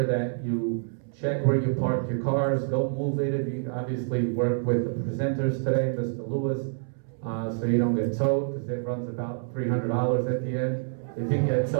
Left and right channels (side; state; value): left; silent; 60 dB below the other